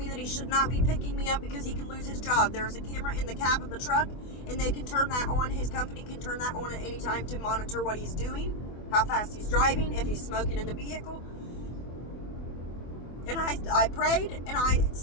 that he should not be picking me up because he can lose his job. There is a camera in the cab of the truck, and they can turn that on. His company can turn that on at any time to monitor what he's doing, how fast he's driving, if he's smoking in the vehicle. And I prayed, and I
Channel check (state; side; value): late; right; 24 ms